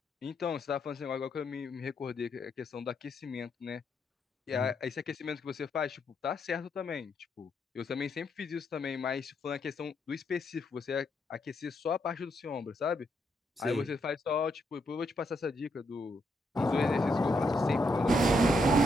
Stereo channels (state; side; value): normal; both; correlation 0.78